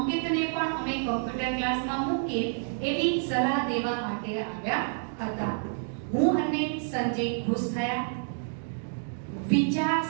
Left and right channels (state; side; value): silent; left; digital silence